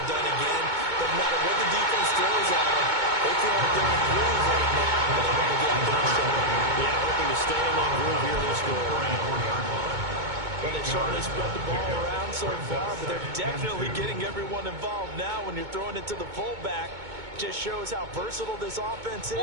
done again. Doesn't matter what the defense throws at them. They feel like they're in groove right now. And they want to get out there and show them. Yeah, hoping to stay in that groove here this go around. Well, they've certainly spread the ball around so far, but they're definitely getting everyone involved now when you're throwing it to the fullback. Just shows how versatile this offense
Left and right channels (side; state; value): left; late; 2.2 ms